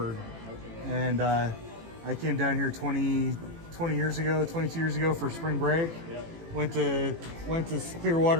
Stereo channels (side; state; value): left; late; 18 ms